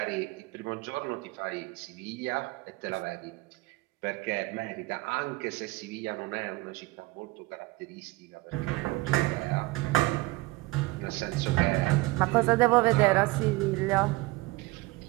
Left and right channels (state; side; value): quieter; left; 21.6 dB